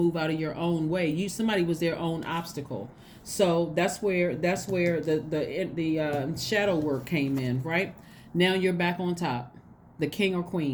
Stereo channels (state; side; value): identical; both; correlation 1.00